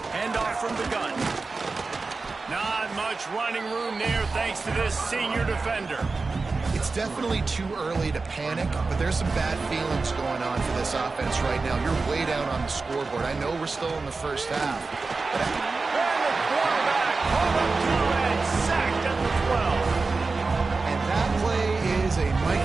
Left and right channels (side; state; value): left; quieter; 4.0 dB